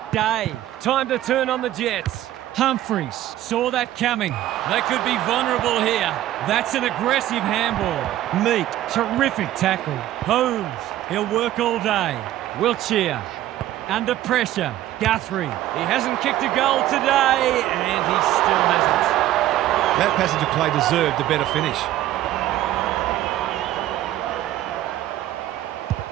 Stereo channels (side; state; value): left; quieter; 13.8 dB